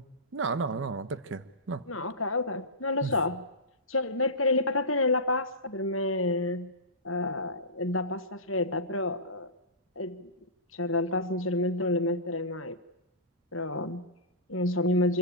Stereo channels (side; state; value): both; normal; correlation -0.20